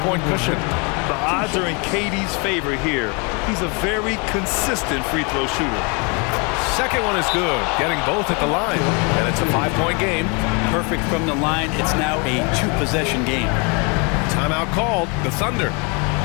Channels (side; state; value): right; quieter; 32.3 dB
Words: cushion. The odds are in KD's favor here. He's a very consistent free throw shooter. Second one is good, getting both at the line, and it's a 5-point game. Perfect from the line. It's now a 2-possession game. Timeout called, the Thunder.